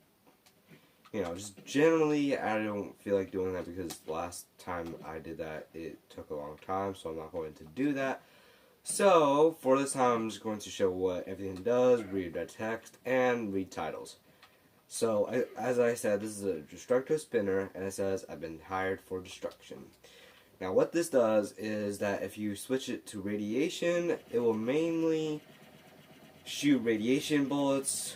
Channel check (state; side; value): identical; both; correlation 1.00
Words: just generally I don't feel like doing that because last time I did that it took a long time, so I'm not going to do that. So, for this time I'm just going to show what everything does, read red text, and read titles. So, as I said, this is a Destructo Spinner, and it says, I've been hired for destruction. Now, what this does is that if you switch it to radiation, it will mainly shoot radiation bullets